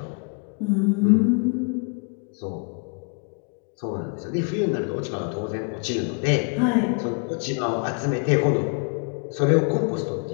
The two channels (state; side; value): quieter; right; 37.7 dB